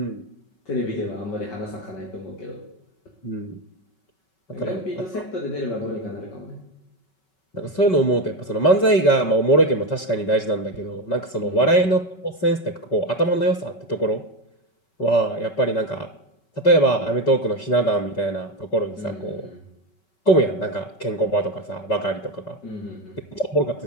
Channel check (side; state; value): right; late; 5.3 ms